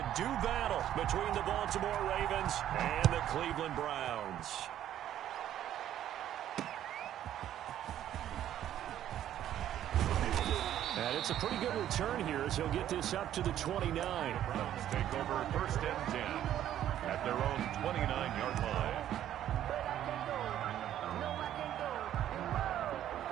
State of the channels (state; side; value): quieter; left; 11.5 dB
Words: do battle between the Baltimore Ravens and the Cleveland Browns. And it's a pretty good return here as he'll get this up to the 29. The Browns take over first and 10 at their own 29-yard line.